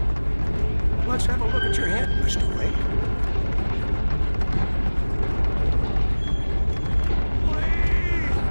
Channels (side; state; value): both; inverted; correlation -1.00